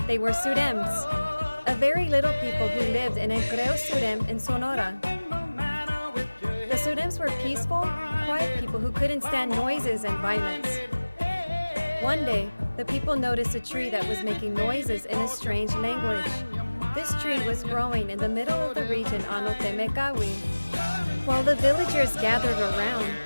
They were Surems, a very little people who lived in El Creo Surem in Sonora. The Surems were peaceful, quiet people who couldn't stand noises and violence. One day, the people noticed a tree that was making noises in a strange language. This tree was growing in the middle of the region MMIW. While the villagers gathered around,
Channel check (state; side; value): inverted; both; correlation -1.00